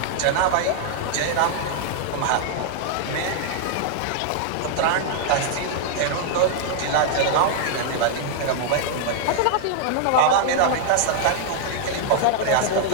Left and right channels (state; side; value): different; both; correlation -0.01